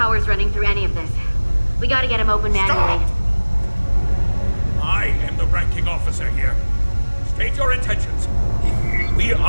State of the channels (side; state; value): both; inverted; correlation -1.00